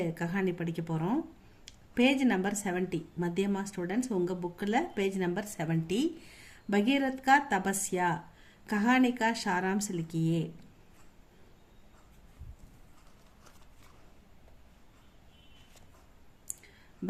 கஹானி படிக்க போகிறோம். Page number 70. மத்தியமா ஸ்டூடெண்ட்ஸ் உங்கள் புக்கில் பேஜ் நம்பர் 70. பகீரத் கா தபஸ்யா கஹானி கா சாராம்ஸ் லிக்கியே.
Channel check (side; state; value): both; identical; correlation 1.00